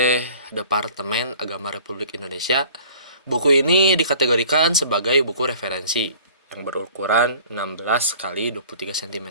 Departemen Agama Republik Indonesia. Buku ini dikategorikan sebagai buku referensi yang berukuran 16 kali 23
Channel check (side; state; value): both; inverted; correlation -0.49